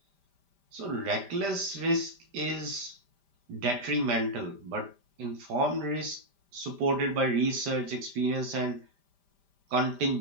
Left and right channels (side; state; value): left; late; 5.1 ms